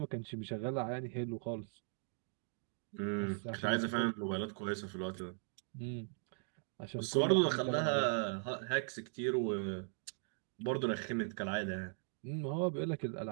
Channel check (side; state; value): left; silent; 52 dB below the other